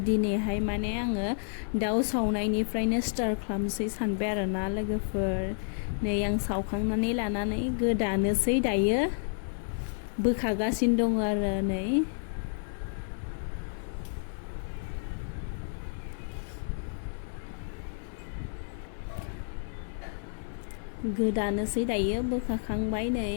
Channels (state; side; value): silent; right; 58 dB below the other